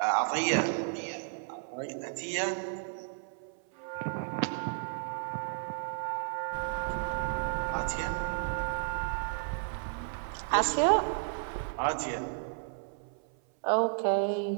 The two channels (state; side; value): silent; left; 56 dB below the other